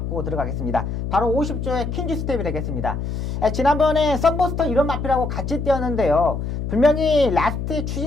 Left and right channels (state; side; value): noise; left; hum, 4 dB below the sound